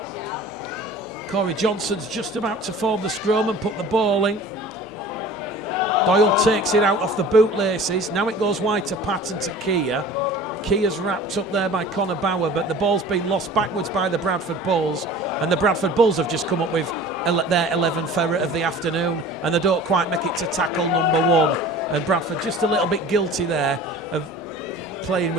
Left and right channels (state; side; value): normal; both; correlation 0.42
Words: Corey Johnson's just about to form the scrum and put the ball in. Doyle takes it out off the bootlaces. Now it goes wide to Patton to Kia. Kia's wrapped up there by Connor Bauer, but the ball's been lost backwards by the Bradford Bulls, and the Bradford Bulls have just come up with their 11th ferret of the afternoon, and they don't quite make it to tackle number 1. And Bradford just a little bit guilty there of playing